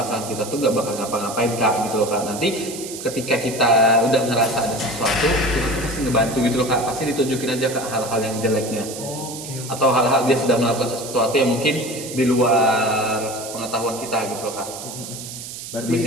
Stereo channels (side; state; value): right; noise; hiss, 10 dB below the sound